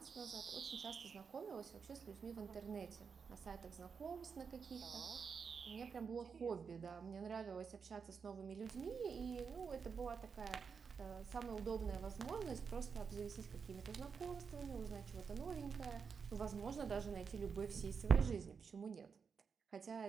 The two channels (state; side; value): quieter; left; 5.9 dB